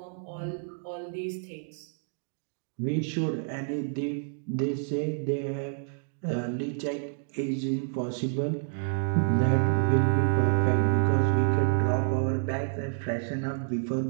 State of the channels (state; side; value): silent; left; digital silence